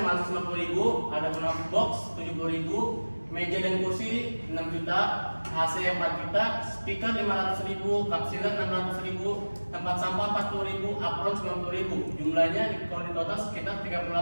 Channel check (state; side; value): inverted; both; correlation -1.00